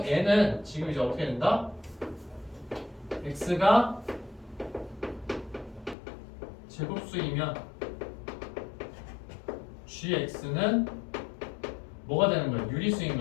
얘는 지금 이제 어떻게 된다? x가 제곱수이면 gx는 뭐가 되는 거예요? 유리수인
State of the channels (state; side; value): drops out; right; at 6.0 s